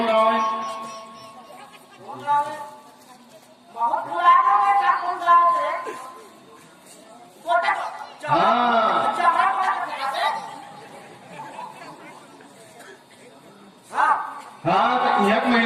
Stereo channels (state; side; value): identical; both; correlation 1.00